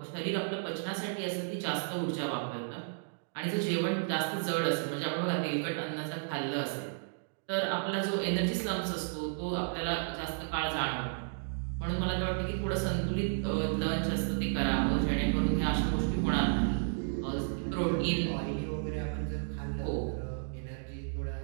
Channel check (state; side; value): silent; left; digital silence